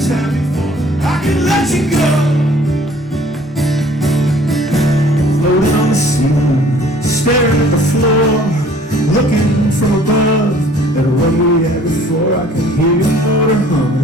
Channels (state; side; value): normal; both; correlation 0.54